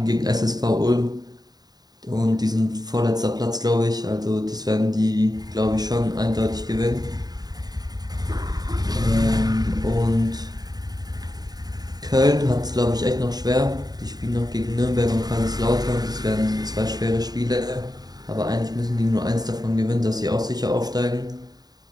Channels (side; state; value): left; late; 0.19 ms